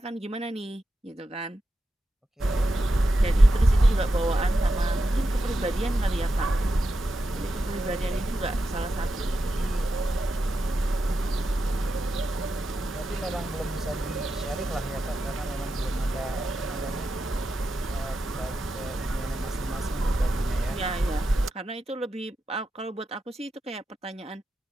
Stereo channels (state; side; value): normal; both; correlation 0.88